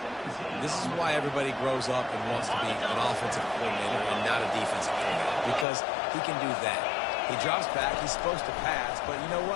This is why everybody grows up and wants to be an offensive coordinator and not a defensive coordinator, because he can do that. He drops back. He's supposed to pass, but you know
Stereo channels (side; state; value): right; drops out; at 5.7 s